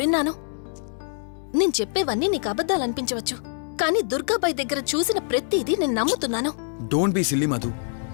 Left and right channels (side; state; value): right; silent; digital silence